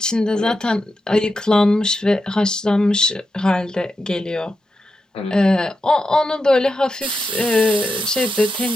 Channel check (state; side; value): normal; both; correlation 0.88